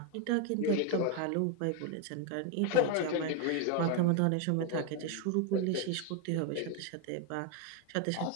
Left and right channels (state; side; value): different; both; correlation 0.01